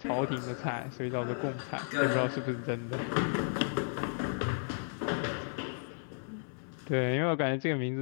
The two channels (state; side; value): silent; right; digital silence